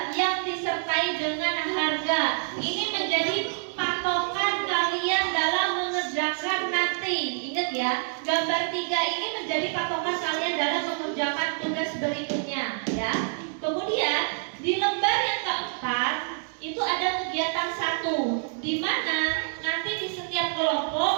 yang disertai dengan harga. Ini menjadi patokan kalian dalam mengerjakan nanti. Ingat ya, gambar 3 ini menjadi patokan kalian dalam mengerjakan tugas berikutnya ya. Kemudian di lembar yang keempat itu ada kegiatan 1, di mana nanti di setiap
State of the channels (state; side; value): silent; left; 60 dB below the other